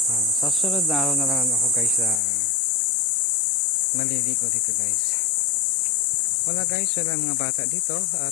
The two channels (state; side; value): drops out; right; at 2.2 s